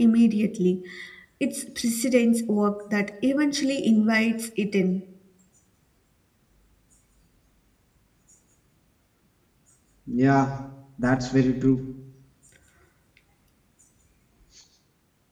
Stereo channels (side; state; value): both; identical; correlation 1.00